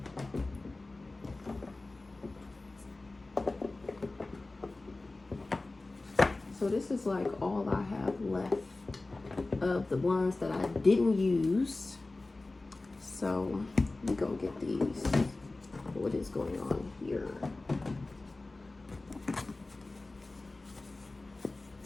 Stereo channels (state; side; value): quieter; right; 3.1 dB